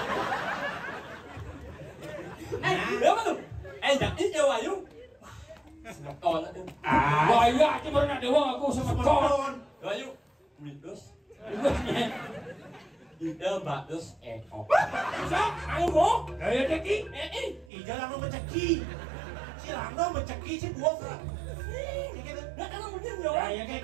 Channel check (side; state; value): left; drops out; at 17.7 s